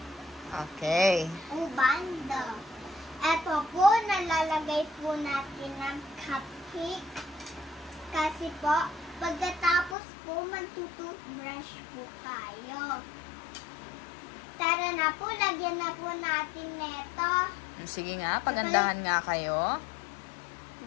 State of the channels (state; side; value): drops out; right; at 10.0 s